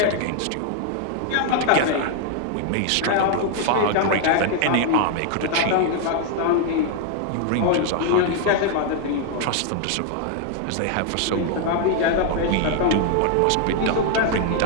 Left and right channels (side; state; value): both; different; correlation 0.00